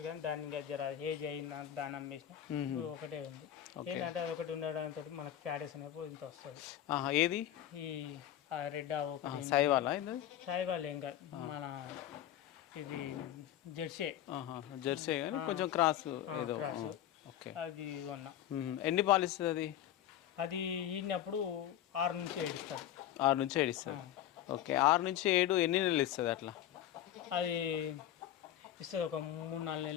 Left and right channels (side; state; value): right; quieter; 11.7 dB